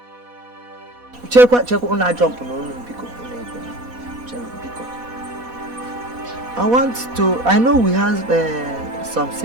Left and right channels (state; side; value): late; left; 4.1 ms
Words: Check on jump no because I know we have some